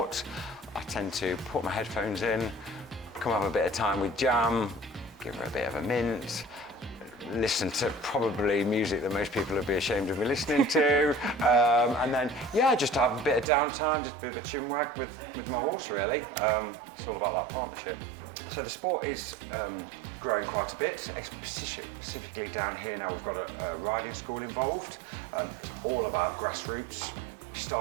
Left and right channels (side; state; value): left; drops out; at 13.5 s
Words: I tend to put my headphones in, come have a bit of time with Jam, give her a bit of a mint, listen to probably music that most people would be ashamed of me listening to, and then just have a bit of downtime, just a bit of a chinwag with my horse, really. It's all about that partnership. So the sport is growing quite a bit, specifically down here now we've got a riding school involved. It's all about grassroots. You